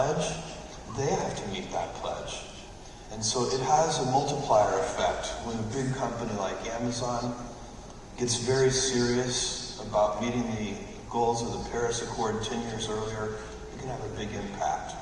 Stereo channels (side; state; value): both; identical; correlation 1.00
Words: they have to meet that pledge. And so it has a multiplier effect when a big company like Amazon gets very serious about meeting the goals of the Paris Accord 10 years earlier. It can have a big impact.